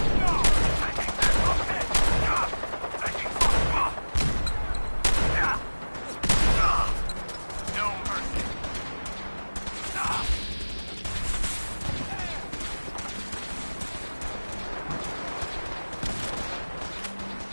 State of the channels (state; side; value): inverted; both; correlation -1.00